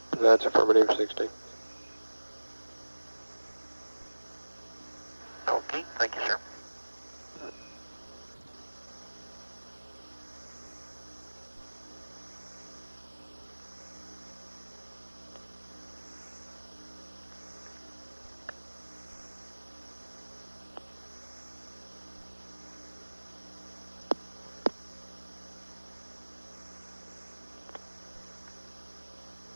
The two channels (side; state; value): both; inverted; correlation -1.00